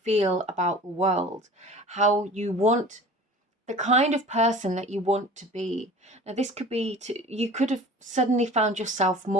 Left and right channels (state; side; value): normal; both; correlation 0.42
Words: about the world, how you want. The kind of person that you want to be. Now, this could be you could have suddenly found yourself